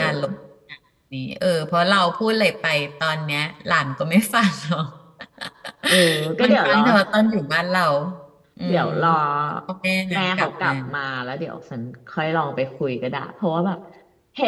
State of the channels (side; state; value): both; identical; correlation 1.00